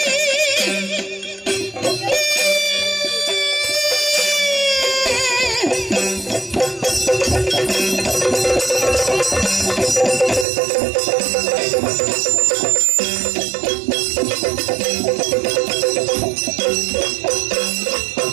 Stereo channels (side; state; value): left; drops out; at 10.5 s